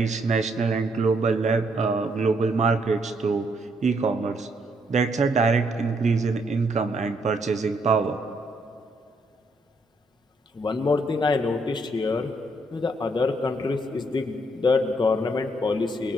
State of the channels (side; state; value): both; normal; correlation 0.72